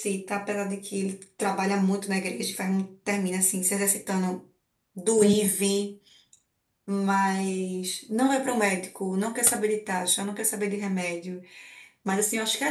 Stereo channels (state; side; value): identical; both; correlation 1.00